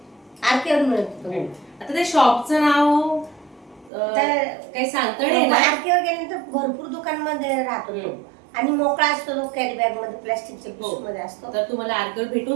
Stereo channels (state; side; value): drops out; left; at 3.9 s